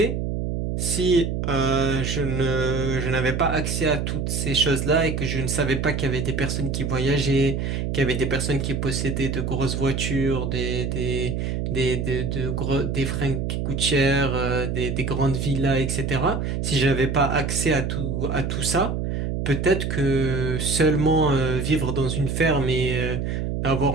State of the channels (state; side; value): noise; right; hum, 1 dB below the sound